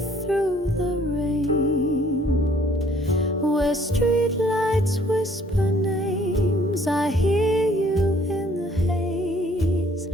through the rain. Where streetlights whisper names, I hear you in the haze.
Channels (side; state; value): both; normal; correlation 0.60